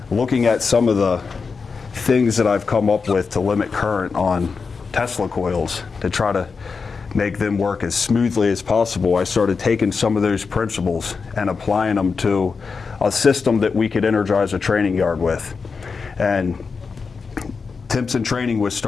looking at some of the things that I've come up with to limit current on Tesla coils to try to make them work as smoothly as possible, I started taking some of those principles and applying them to a system that we could energize a training yard with. And Timpson Training was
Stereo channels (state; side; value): quieter; right; 5.0 dB